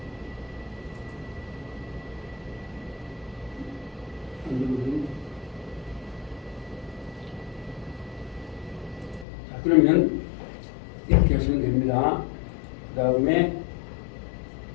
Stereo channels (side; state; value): right; drops out; at 9.2 s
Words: 자, 그러면 이렇게 하시면 됩니다. 그 다음에